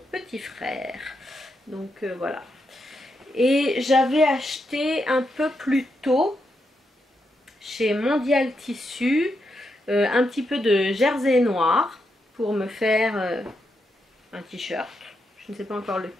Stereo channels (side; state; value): both; normal; correlation 0.83